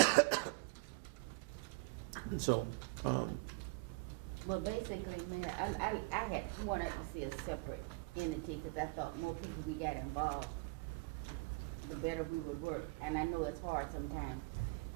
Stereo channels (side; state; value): left; quieter; 27.3 dB